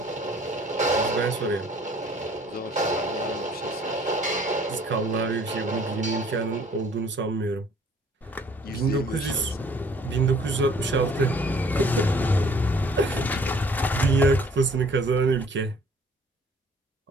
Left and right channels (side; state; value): both; normal; correlation 0.56